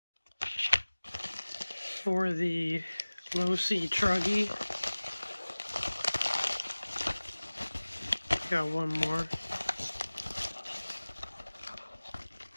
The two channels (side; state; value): both; inverted; correlation -1.00